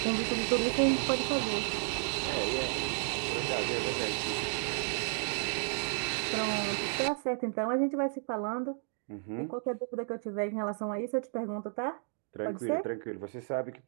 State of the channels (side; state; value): left; silent; 56 dB below the other